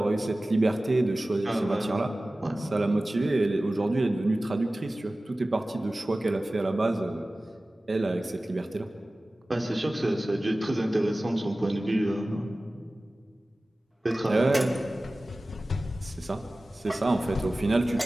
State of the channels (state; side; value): normal; both; correlation 0.97